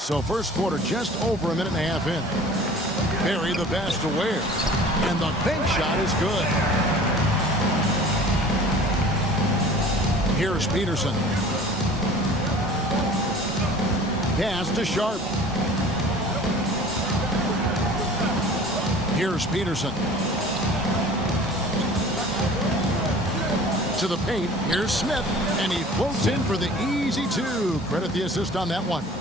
first quarter just over a minute and a half in. Berry the pass to Ware. And the bank shot is good. Here's Peterson. Pass to Sharp. Here's Peterson. To the paint. Here's Smith. And he floats in for the easy two. Credit the assist on that one.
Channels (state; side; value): normal; both; correlation 0.45